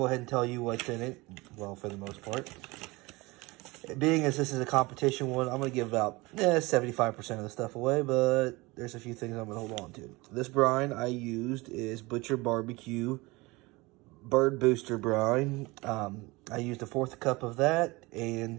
ahead and tell you what's in it, well, for the most part. Being as this is a competition one, I'm going to give about 75% of the stuff away, but there's a few things I'm going to hold on to. This brine I used is Butcher Barbecue Bird Booster brine. I used a 1/4 cup of that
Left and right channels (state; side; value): quieter; left; 23.0 dB